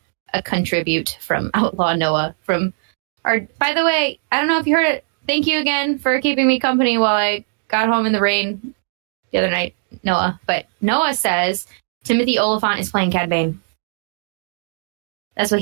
from Outlaw Noah from our. By the way, I don't know if you heard it. Thank you again for keeping me company while I got home in the rain the other night, Noah. But Noah says Timothy Oliphant is playing Cad Bane. That's what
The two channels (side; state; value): left; silent; 66 dB below the other